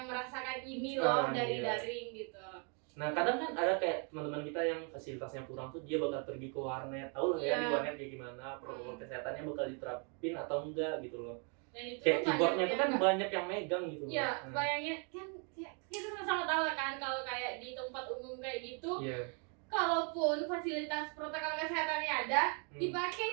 merasakan ini loh dari Iya. daring gitu. Nah kadang kan ada kayak teman-teman kita yang fasilitasnya kurang tuh, dia bakal pergi ke warnet, tahu lah ya Iya. di warnet kayak gimana, protokol kesehatannya bakal diterapin atau enggak gitu loh. Dan itu Kayak tuh keyboardnya tuh kan yang banyak yang megang gitu. Iya, Nah, bayangin kan kita sama-sama tahu kan kalau kayak di tempat umum kayak gitu, iya. kalaupun fasilitas protokol kesehatannya ada, dipakai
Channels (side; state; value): left; quieter; 37.6 dB